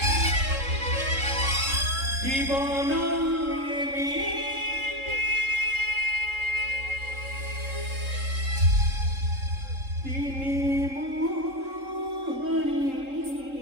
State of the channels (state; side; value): late; left; 3.7 ms